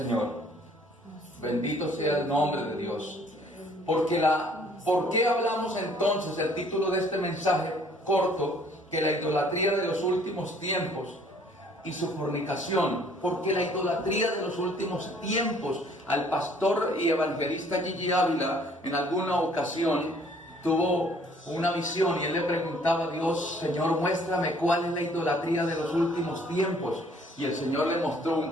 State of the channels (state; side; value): normal; both; correlation 0.58